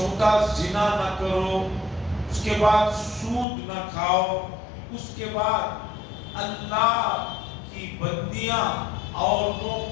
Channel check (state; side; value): drops out; right; at 3.5 s